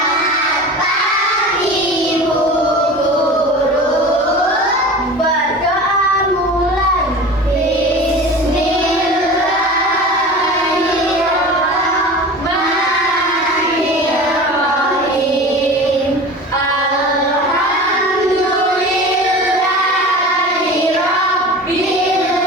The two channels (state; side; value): normal; both; correlation 0.35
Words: pagi Bu Guru. Berdoa mulai. Bismillahirrahmanirrahim. Alhamdulillahirabbil